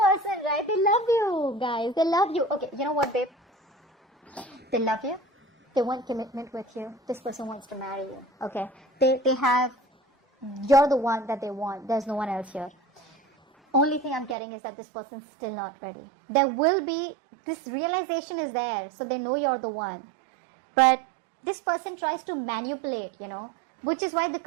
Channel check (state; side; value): drops out; left; at 14.4 s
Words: right? They love you, guys. They love you. Okay, you know what, babe? They love you. They want commitment with you. This person wants to marry you. Okay. You're the one that they want. There's no one else here. Only thing I'm getting is that this person's still not ready. There will be, this realization is there, so they know you're the one. But this person tries to manipulate, which is why the